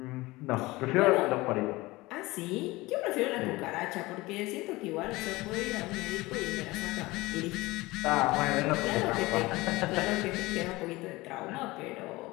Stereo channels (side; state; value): right; quieter; 20.8 dB